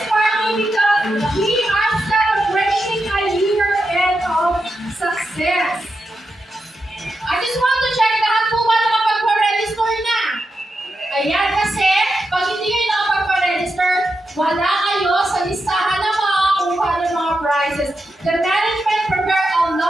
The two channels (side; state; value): both; normal; correlation 0.87